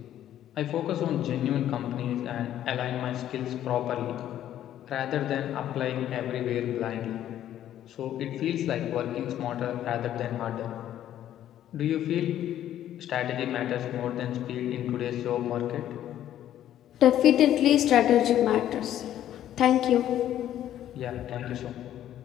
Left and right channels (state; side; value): quieter; right; 11.7 dB